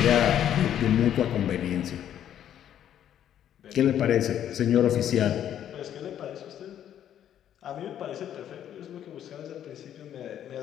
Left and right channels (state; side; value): quieter; right; 10.4 dB